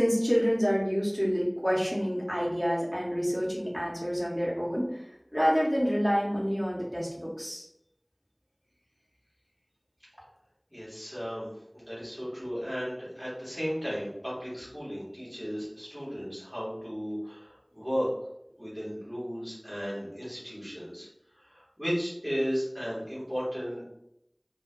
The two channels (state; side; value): identical; both; correlation 1.00